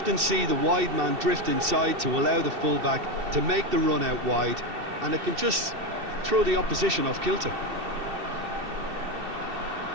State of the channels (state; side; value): late; left; 2.7 ms